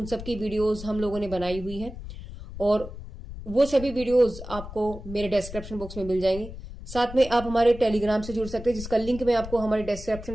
सब की वीडियोस हम लोगों ने बनाई हुई हैं और वो सभी वीडियोस आपको मेरे डिस्क्रिप्शन बॉक्स में मिल जाएंगे। साथ में आप हमारे टेलीग्राम से जुड़ सकते हैं, जिसका लिंक मैं आपको हमारे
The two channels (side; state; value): left; noise; rumble, 12 dB below the sound